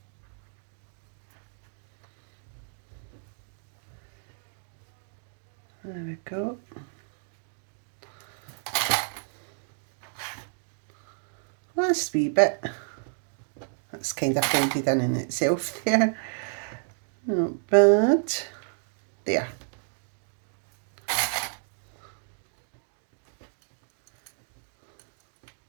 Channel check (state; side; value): silent; left; 57 dB below the other